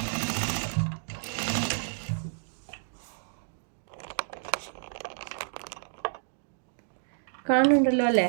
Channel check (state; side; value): silent; left; digital silence